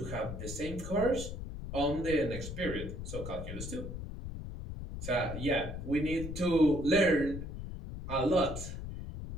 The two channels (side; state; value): left; noise; rumble, 7 dB below the sound